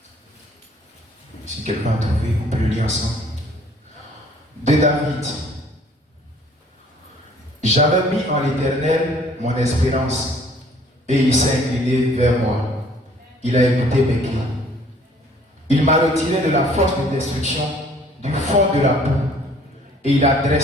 Si quelqu'un a trouvé, on peut le lire ensemble. De David. J'avais mis en l'Éternel mon espérance, et il s'est incliné vers moi. Il a écouté mes cris. Il m'a retiré de la force de destruction, du fond de la boue, et il a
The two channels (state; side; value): normal; both; correlation 0.57